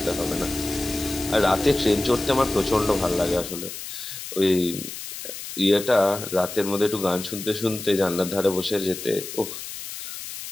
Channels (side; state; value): left; noise; hiss, 9 dB below the sound